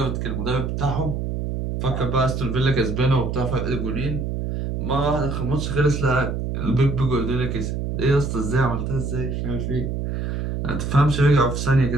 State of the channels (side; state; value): right; noise; hum, 2 dB below the sound